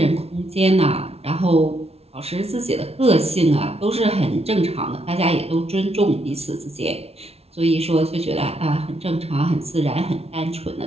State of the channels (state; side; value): late; left; 0.30 ms